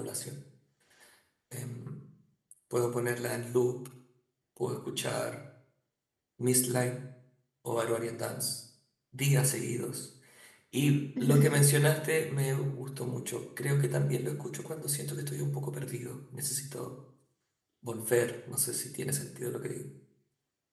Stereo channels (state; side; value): identical; both; correlation 1.00